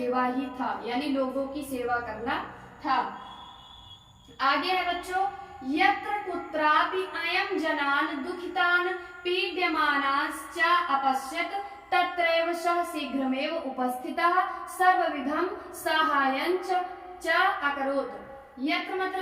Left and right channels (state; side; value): identical; both; correlation 1.00